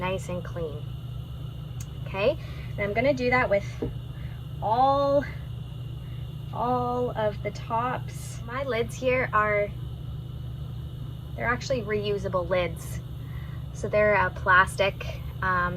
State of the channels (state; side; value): identical; both; correlation 1.00